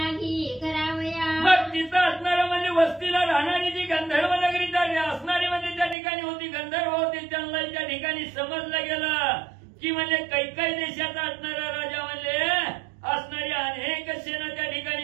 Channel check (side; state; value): left; drops out; at 6.0 s